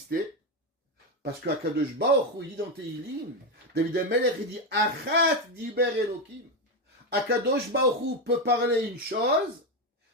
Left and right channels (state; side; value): normal; both; correlation 0.10